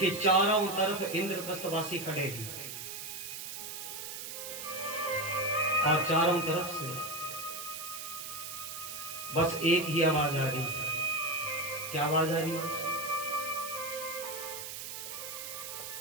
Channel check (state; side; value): noise; right; hiss, 8 dB below the sound